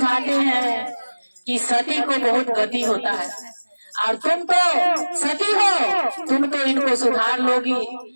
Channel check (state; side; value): inverted; both; correlation -1.00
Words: हैं कि सती को बहुत गति होता है और तुम तो सती हो, तुम तो इनको सुधार लोगी।